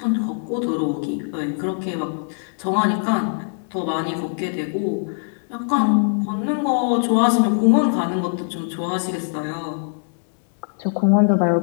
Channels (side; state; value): right; silent; 64 dB below the other